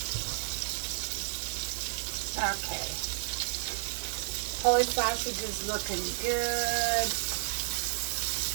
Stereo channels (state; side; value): silent; left; 57 dB below the other